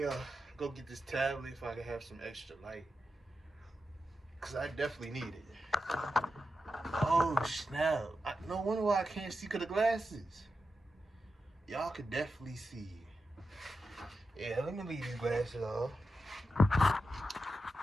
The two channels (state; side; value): normal; both; correlation 0.89